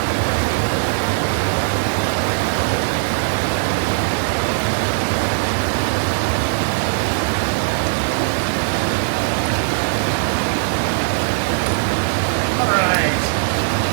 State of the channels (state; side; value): silent; left; digital silence